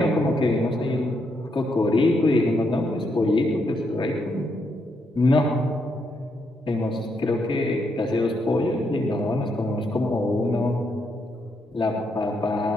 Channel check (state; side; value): normal; both; correlation 0.78